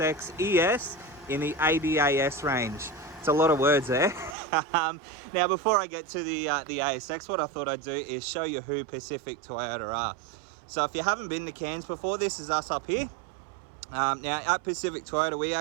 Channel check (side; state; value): left; drops out; at 4.4 s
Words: ES in the ADAS range. It's a lot of words there. Now, before I get to the ASX, what I thought I'd do is show you who Pacific Toyota are. So if you haven't been to Cairns before, this is us up here. Now, at Pacific Toyota, we